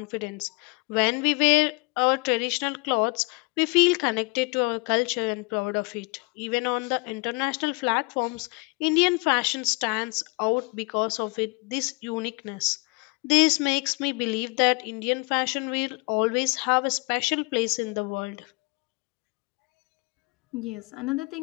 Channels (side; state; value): right; quieter; 30.1 dB